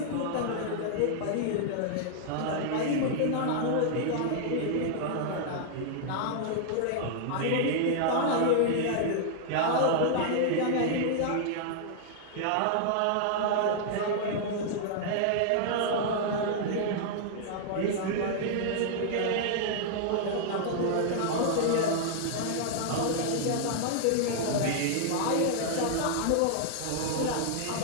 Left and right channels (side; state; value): both; different; correlation -0.01